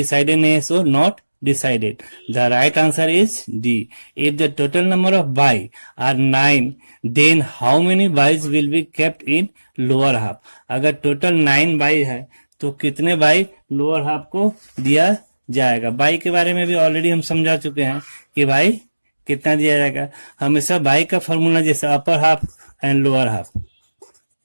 नहीं है, so not decided. The right answer is D. If the total number of bye are 9 then how many byes will be kept in lower half. अगर टोटल 9 बाई है तो कितने बाई लोअर हाफ को दिया जाएगा। By के बारे में भी ऑलरेडी हम समझा चुके हैं कि बाई कितना दिया जाएगा। हमेशा बाई का फॉर्मूला जैसे upper half and lower half,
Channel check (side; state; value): both; inverted; correlation -1.00